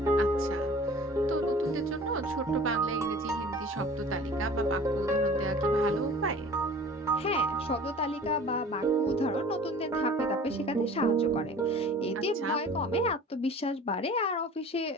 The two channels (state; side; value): normal; both; correlation 0.44